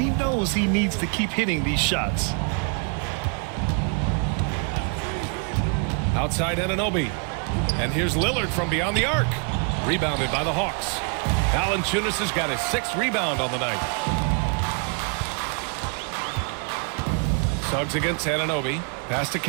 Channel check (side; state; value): left; quieter; 39.8 dB